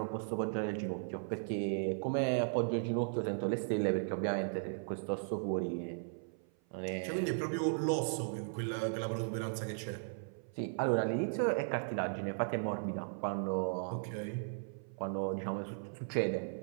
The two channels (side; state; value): left; silent; 53 dB below the other